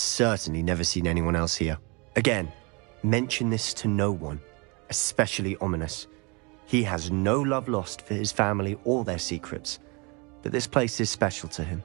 never seen anyone else here. Again, mention this to no one, especially Ominous. He has no love lost for his family or their secrets, but this place is special to him.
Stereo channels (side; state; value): left; quieter; 29.5 dB